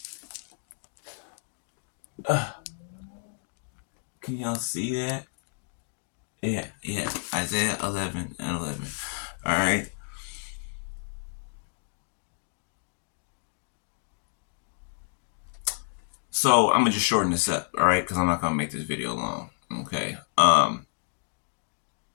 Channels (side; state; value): right; silent; 55 dB below the other